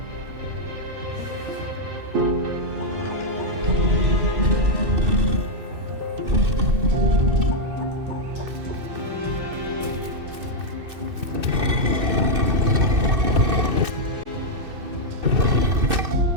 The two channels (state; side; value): late; left; 2.6 ms